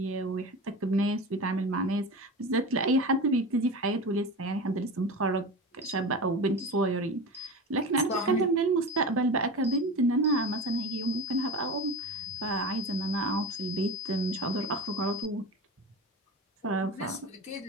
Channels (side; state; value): both; normal; correlation 0.28